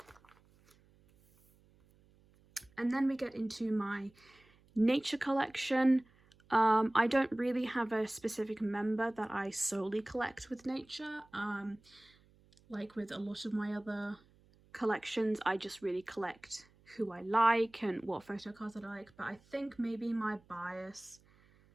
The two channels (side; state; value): right; noise; hum, 30 dB below the sound